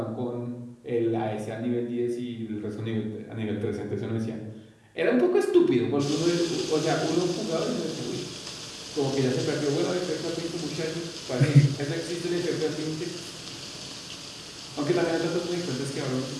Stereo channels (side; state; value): both; identical; correlation 1.00